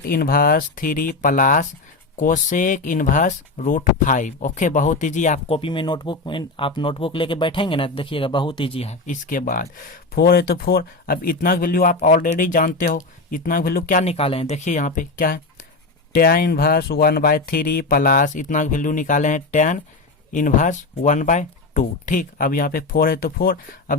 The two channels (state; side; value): quieter; right; 3.5 dB